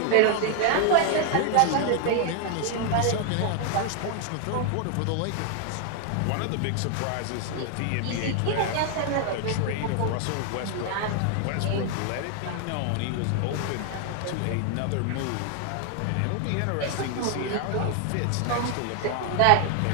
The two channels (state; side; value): different; both; correlation 0.00